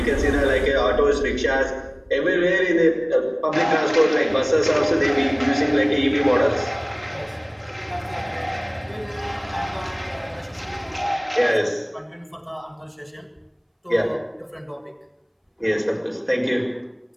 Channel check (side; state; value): both; identical; correlation 1.00